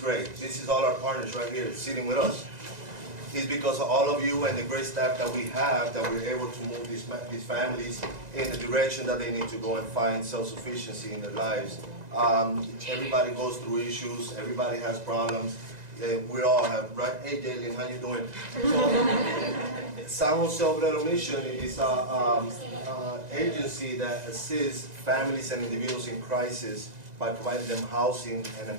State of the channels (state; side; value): late; left; 1.9 ms